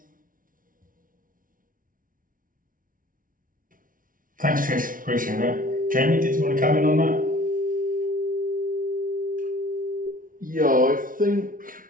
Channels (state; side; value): late; left; 0.39 ms